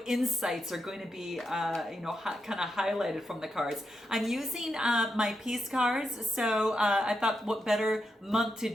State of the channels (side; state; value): both; normal; correlation 0.85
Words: insights are going to be, kind of highlighted from the cards. I'm using my peace cards, so I thought what better month to